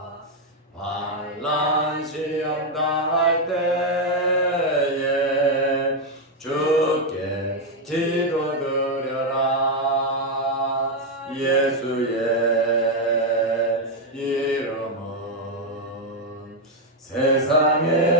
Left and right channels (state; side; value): normal; both; correlation 0.02